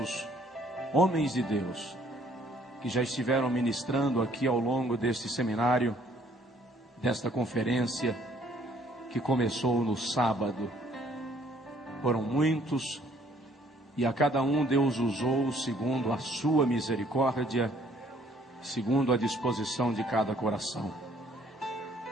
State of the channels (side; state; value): both; normal; correlation 0.61